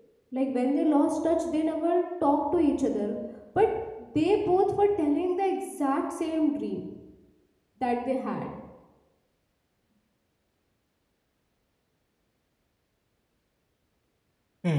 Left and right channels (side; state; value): both; identical; correlation 1.00